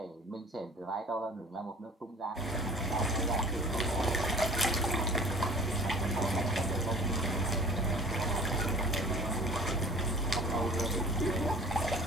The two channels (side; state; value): both; normal; correlation 0.45